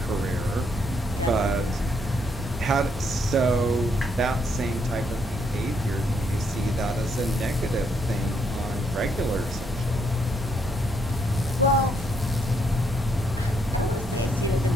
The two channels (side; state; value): right; noise; hum, 14 dB below the sound